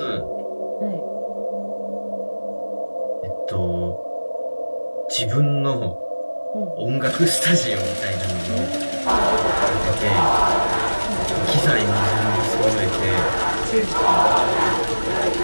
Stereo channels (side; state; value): both; inverted; correlation -1.00